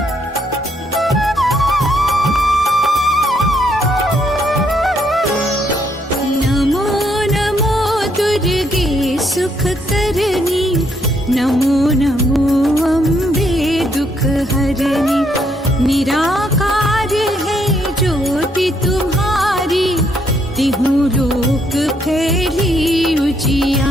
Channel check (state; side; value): normal; both; correlation 0.72